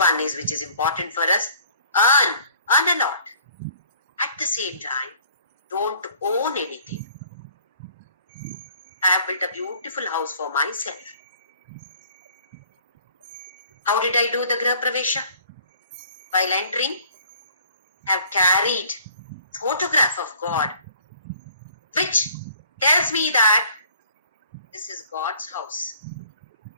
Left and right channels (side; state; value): both; inverted; correlation -0.55